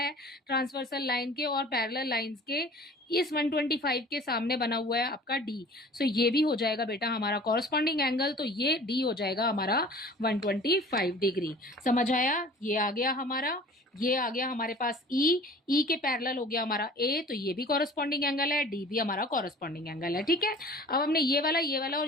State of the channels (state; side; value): normal; both; correlation 0.46